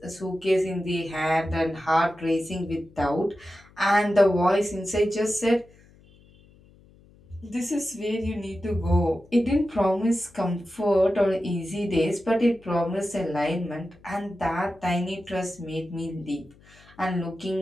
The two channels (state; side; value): noise; left; hum, 27 dB below the sound